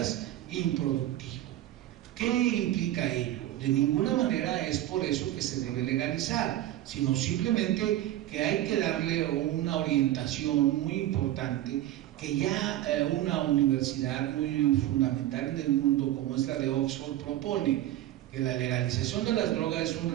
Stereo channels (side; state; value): left; quieter; 13.8 dB